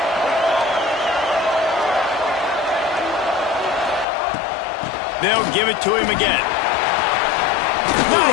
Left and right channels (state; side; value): drops out; right; at 4.0 s